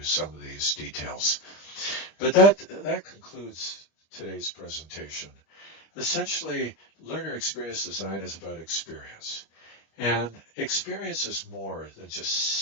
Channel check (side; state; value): right; late; 25 ms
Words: some of these details. But that concludes today's presentation. Essentially, learner experience design is about experience. And experience is more than just